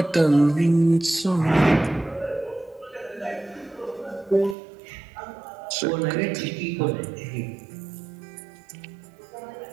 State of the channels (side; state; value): left; drops out; at 4.5 s